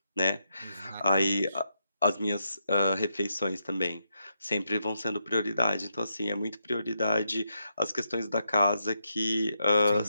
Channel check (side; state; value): both; inverted; correlation -0.83